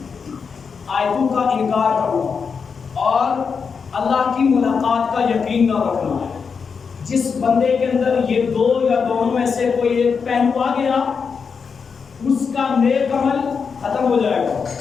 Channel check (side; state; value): right; quieter; 5.8 dB